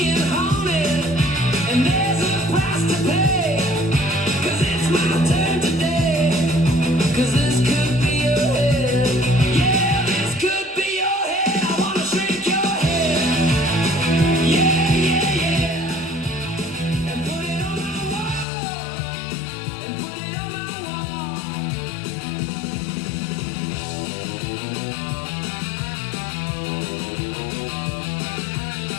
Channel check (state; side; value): drops out; right; at 18.4 s